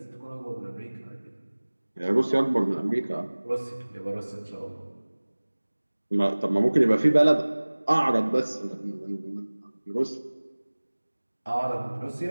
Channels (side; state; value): both; inverted; correlation -1.00